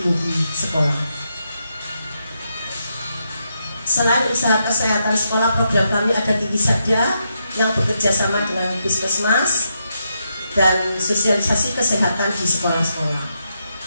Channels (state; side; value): inverted; both; correlation -0.82